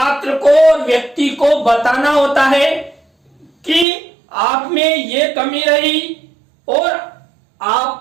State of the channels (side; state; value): left; drops out; at 3.9 s